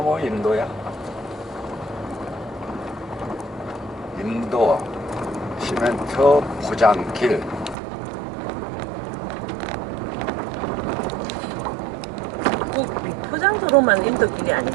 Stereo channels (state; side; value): drops out; left; at 7.8 s